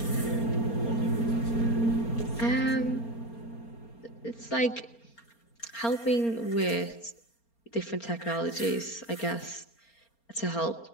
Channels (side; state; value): right; late; 4.3 ms